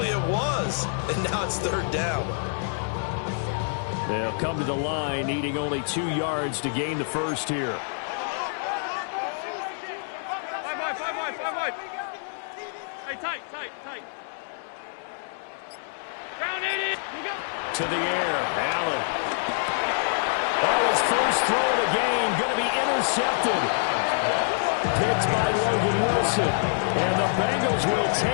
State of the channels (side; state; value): right; silent; 61 dB below the other